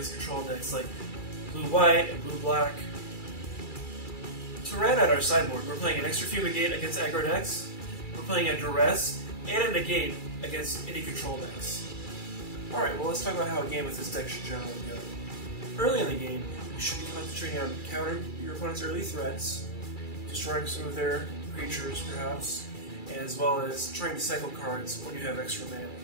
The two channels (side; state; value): right; late; 2.3 ms